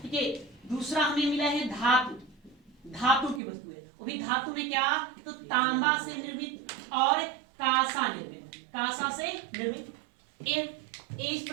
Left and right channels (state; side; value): drops out; left; at 3.4 s